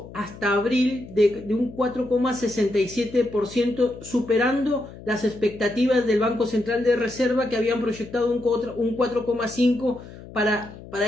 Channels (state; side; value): noise; left; hum, 16 dB below the sound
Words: hasta abril de un 4,67%, superando las expectativas del Banco Central de Reserva, que habían proyectado un 4,5% para